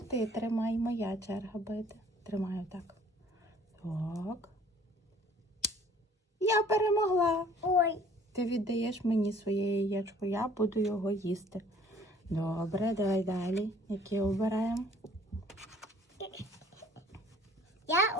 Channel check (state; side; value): normal; both; correlation 0.55